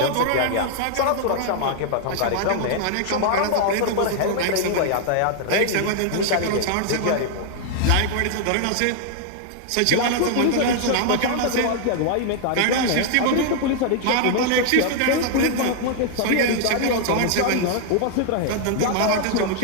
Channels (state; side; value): different; both; correlation 0.00